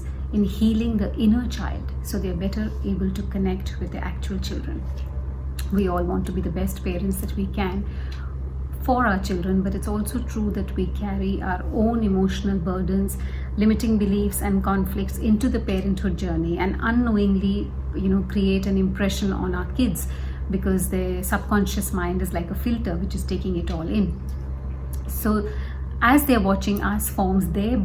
in healing the inner child so they're better able to connect with their actual children. We all want to be the best parents that we can for our children, but it's also true that we carry our own emotional burdens, limiting beliefs and conflicts into the parenthood journey, and unknowingly create an impression on our kids because their subconscious mind is like a filter which is taking it all in. So as they're watching us forms their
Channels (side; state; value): both; identical; correlation 1.00